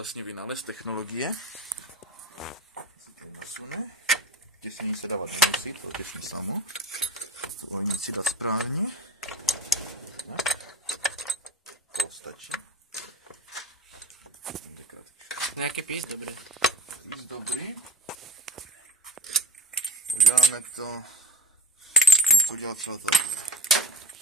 vynález technologie. Se to nasune. Těsnění se dávat nemusí, to těsní samo. To ohnici dá správně. To stačí. Nějaký pís dobrý. Pís dobrý. Uděláme to, musím udělat celé to.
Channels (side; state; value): both; normal; correlation 0.31